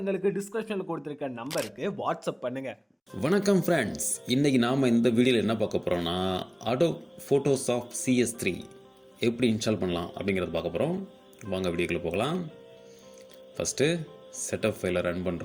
டிஸ்கிரிப்ஷன்ல கொடுத்திருக்க நம்பருக்கு வாட்ஸ்அப் பண்ணுங்க. வணக்கம் ஃப்ரெண்ட்ஸ், இன்றைக்கி நாம் இந்த வீடியோவில் என்ன பார்க்க போகிறோம்னா அடோப் ஃபோட்டோஷாப் CS3 எப்படி இன்ஸ்டால் பண்ணலாம் அப்படிங்கிறத பார்க்க போகிறோம். வாங்க வீடியோக்குள்ளே போகலாம். ஃபஸ்ட்டு செட்டப் ஃபைலை ரன்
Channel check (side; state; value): both; identical; correlation 1.00